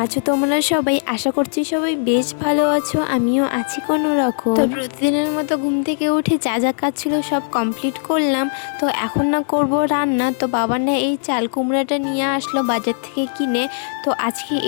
আছো তোমরা সবাই? আশা করছি সবাই বেশ ভালো আছো, আমিও আছি কোনো রকম। তো প্রতিদিনের মতো ঘুম থেকে উঠে যা যা কাজ ছিল সব কমপ্লিট করলাম। তো এখন না করব রান্না। তো বাবা না এই চাল কুমড়াটা নিয়ে আসলো বাজার থেকে কিনে, তো আজকে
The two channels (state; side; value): silent; right; digital silence